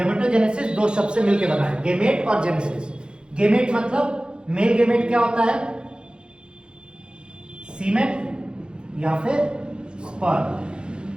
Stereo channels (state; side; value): late; left; 0.051 ms